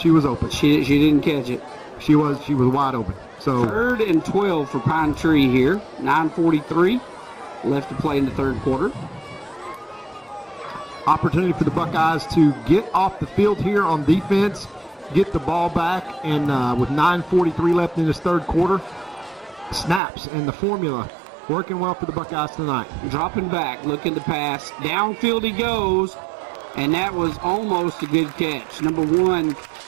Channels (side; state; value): left; drops out; at 20.0 s